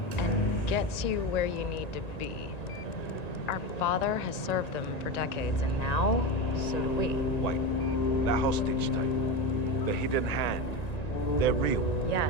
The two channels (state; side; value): late; right; 1.9 ms